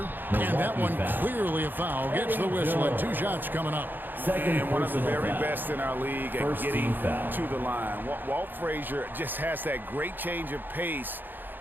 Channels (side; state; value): left; late; 0.091 ms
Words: and that one clearly a foul. Gets the whistle, and 2 shots coming up. And one of the very best in our league at getting to the line. Walt Frazier just has that great change of pace